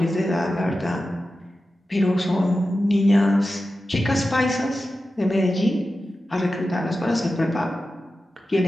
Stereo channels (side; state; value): both; normal; correlation 0.93